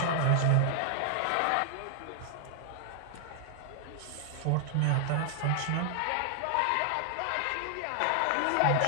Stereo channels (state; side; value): different; both; correlation 0.00